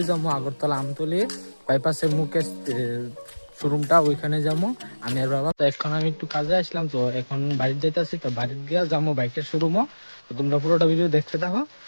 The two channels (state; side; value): inverted; both; correlation -1.00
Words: যাবো আগরতলা আমতলি বাইপাসের মুখে শোরুমটা, ওইখানে যাবো আমি আর বাবা। তো এখন আমি একটু কাজে আসলাম, তো এখন বাড়িতে যাইতেছি। তো বাড়িতে গিয়ে যাবো বাইকের শোরুমও। তো তোমরা পুরোটা ভিডিও দেখতে থাকো।